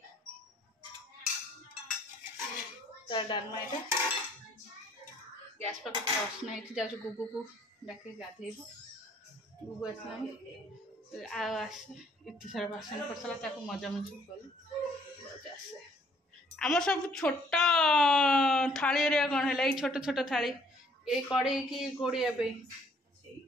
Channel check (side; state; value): both; normal; correlation 0.62